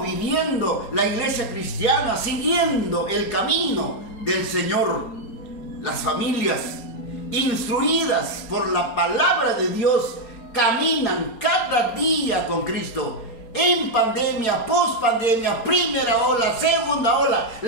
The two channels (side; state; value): right; late; 4.3 ms